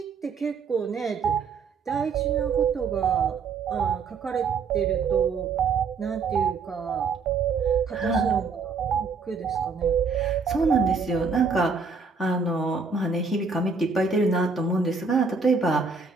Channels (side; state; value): left; quieter; 4.9 dB